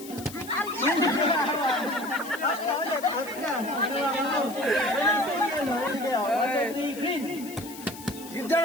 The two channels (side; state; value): left; noise; hiss, 15 dB below the sound